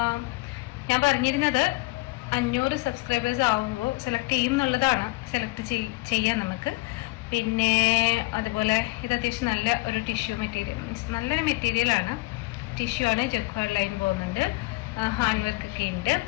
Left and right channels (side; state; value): right; quieter; 22.7 dB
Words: ഞാൻ പറഞ്ഞിരുന്നത് 500 സബ്സ്ക്രൈബേഴ്സ് ആവുമ്പോൾ സെലക്ട് ചെയ്യും എന്നുള്ളതാണ്. സെലക്ട് ചെയ്യാം നമുക്ക്. പിന്നെ അതുപോലെ ഇത് അത്യാവശ്യം നല്ല ഒരു ടിഷ്യൂ മെറ്റീരിയൽ, മീൻസ് നല്ലൊരു മെറ്റീരിയലാണ്. ടിഷ്യൂ ആണ്, ജക്വാർഡ് ലൈൻ പോകുന്നുണ്ട്, ഹാൻഡ് വർക്ക് ഒക്കെ ഉണ്ട്,